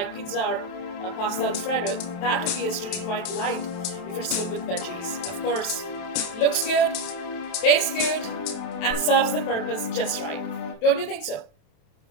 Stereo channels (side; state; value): right; late; 27 ms